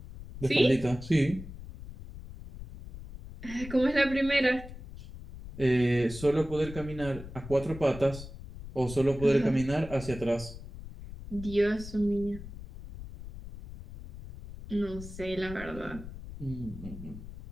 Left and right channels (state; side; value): noise; left; rumble, 13 dB below the sound